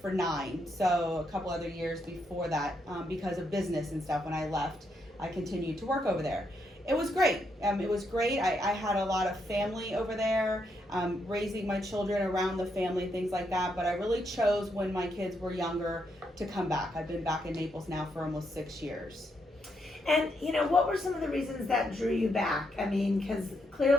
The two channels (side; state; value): both; normal; correlation 0.79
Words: 9. So a couple other years before that, because of business and stuff. When I left, I continued to work over there. It was great. I had a lot of family over there, raising my children around the family, things like that. But I really chose when my kids were younger to come back. I've been back in Naples now for almost 6 years. And what were some of the reasons that drew you back? I mean, because